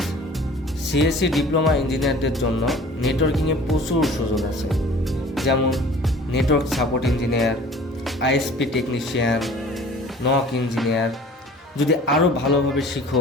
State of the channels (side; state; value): both; normal; correlation 0.47